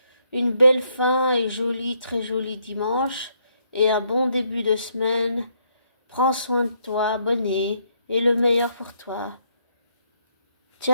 une belle fin et joli, très joli dimanche, et un bon début de semaine. Prends soin de toi, abonné, et le meilleur pour toi.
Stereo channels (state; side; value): inverted; both; correlation -0.73